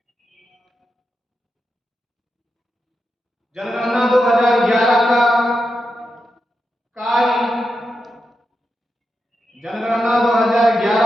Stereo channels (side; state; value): both; normal; correlation 0.87